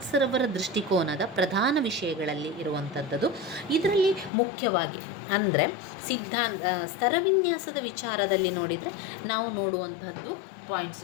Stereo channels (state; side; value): drops out; right; at 4.3 s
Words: ದೃಷ್ಟಿಕೋನದ ಪ್ರಧಾನ ವಿಷಯಗಳಲ್ಲಿ ಇರುವಂಥದ್ದು. ಇದರಲ್ಲಿ ಮುಖ್ಯವಾಗಿ ಅಂದರೆ ಸ್ತರವಿನ್ಯಾಸದ ವಿಚಾರದಲ್ಲಿ ನೋಡಿದರೆ ನಾವು ನೋಡುವಂಥದ್ದು